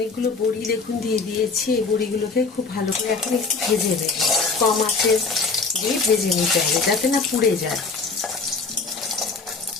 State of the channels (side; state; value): right; quieter; 4.4 dB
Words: বড়ি দেখুন দিয়ে দিয়েছি। এই বড়িগুলোকে খুব ভালো করে এখন একটু ভেজে নেব। কম আঁচে দিয়ে ভেজে নিতে হবে যাতে না পুড়ে যায়।